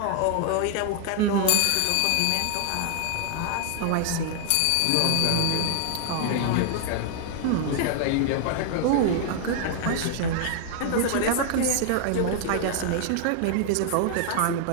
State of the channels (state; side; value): different; both; correlation 0.00